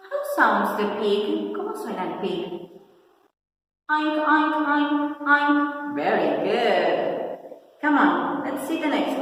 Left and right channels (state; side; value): identical; both; correlation 1.00